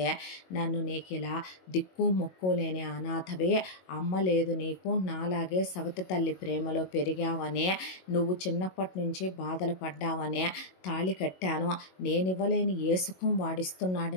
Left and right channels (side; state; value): right; late; 22 ms